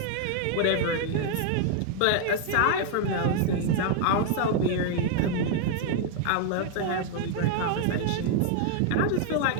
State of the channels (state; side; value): different; both; correlation 0.00